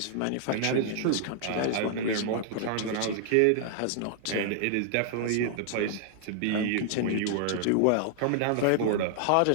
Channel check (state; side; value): different; both; correlation -0.01